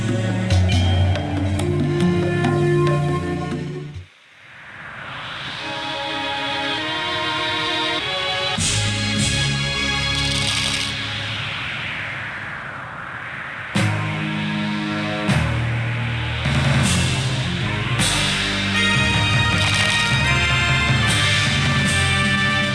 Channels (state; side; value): identical; both; correlation 1.00